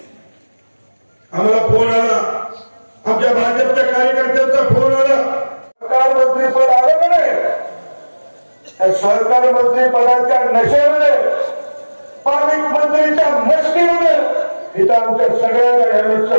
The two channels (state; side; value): inverted; both; correlation -1.00